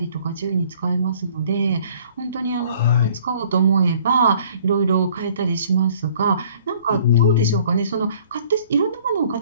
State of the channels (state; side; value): inverted; both; correlation -0.56